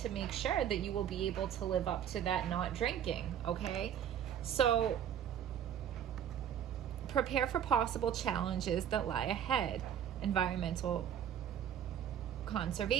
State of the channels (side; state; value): left; quieter; 9.5 dB